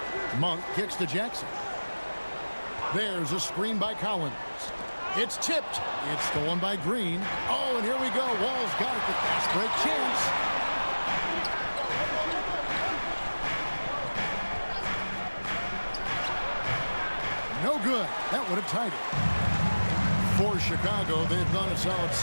Monk kicks to Jackson. There's a screen by Collins. It's tipped. It's stolen by Green. Oh, and here we go. Wall's got it. The fast break chance. No good. That would have tied it. For Chicago, they've gone a solid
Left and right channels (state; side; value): inverted; both; correlation -1.00